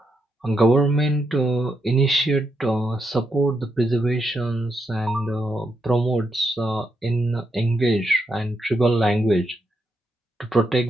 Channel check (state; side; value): normal; both; correlation 0.81